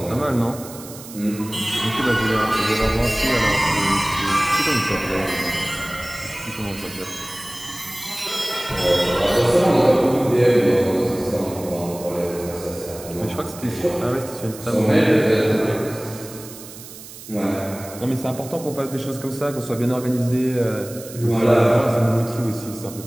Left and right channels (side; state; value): right; noise; hiss, 15 dB below the sound